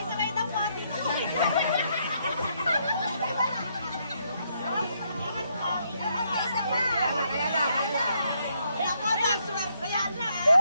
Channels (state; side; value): inverted; both; correlation -0.75